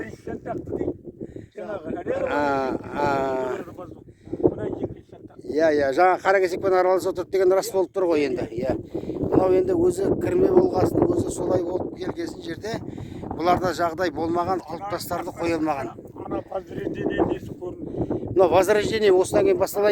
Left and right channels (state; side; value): identical; both; correlation 1.00